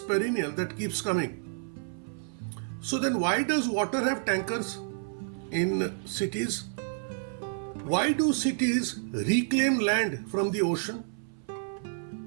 that keeps coming. So, then why does water have tankers in cities? Why do cities reclaim land from the ocean?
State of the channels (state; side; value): silent; left; 58 dB below the other